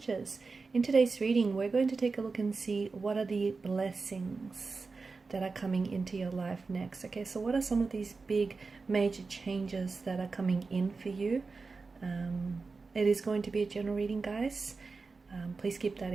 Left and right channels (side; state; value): left; quieter; 4.2 dB